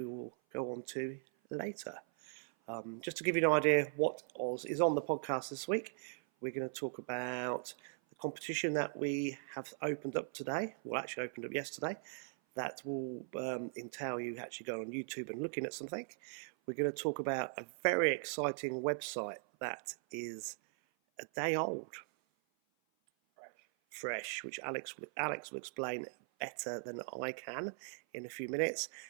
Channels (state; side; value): silent; left; 52 dB below the other